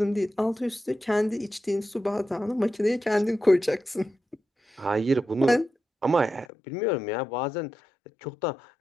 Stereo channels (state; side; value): drops out; right; at 6.5 s